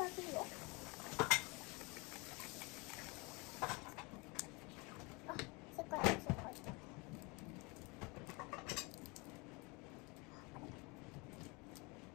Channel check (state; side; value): quieter; right; 27.9 dB